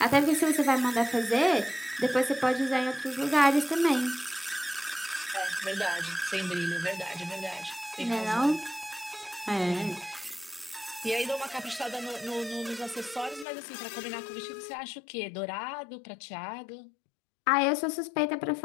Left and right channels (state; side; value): drops out; right; at 13.5 s